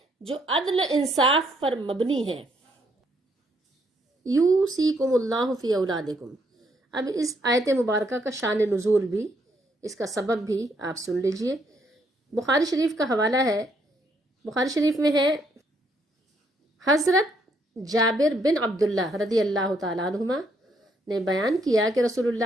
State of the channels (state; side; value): normal; both; correlation 0.72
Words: جو عدل انصاف پر مبنی ہے۔ یوصیکم اللہ فی اولادکم۔ اب اس آیت مبارکہ کا شان نزول بھی، اس کا سبب بھی آپ سن لیجئے۔ بخاری شریف کا حوالہ ہے، بخاری شریف میں ہے، حضرت جابر بن عبداللہ رضی اللہ تعالیٰ عنہما نے بیان کیا کہ رسول